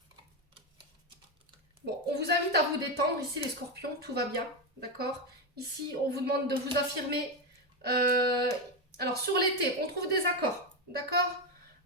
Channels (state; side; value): normal; both; correlation 0.10